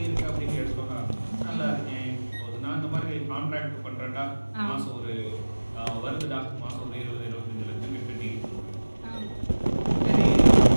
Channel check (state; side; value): inverted; both; correlation -1.00